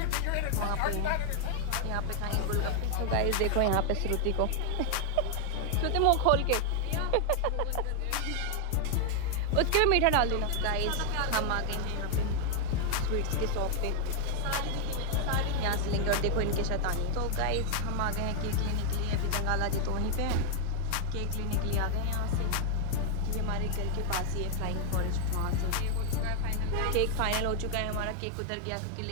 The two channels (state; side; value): different; both; correlation 0.00